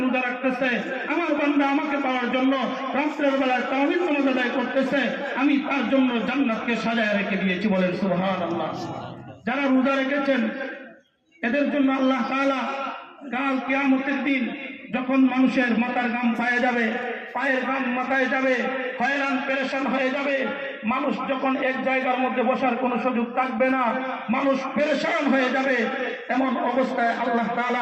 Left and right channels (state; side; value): identical; both; correlation 1.00